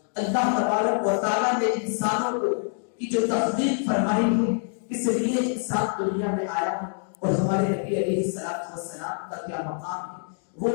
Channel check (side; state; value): right; silent; 61 dB below the other